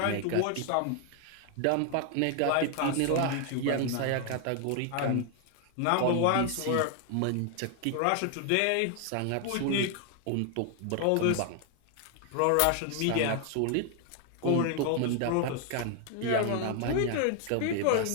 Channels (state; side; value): different; both; correlation 0.00